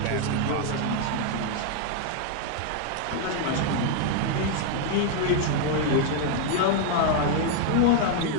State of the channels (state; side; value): different; both; correlation 0.00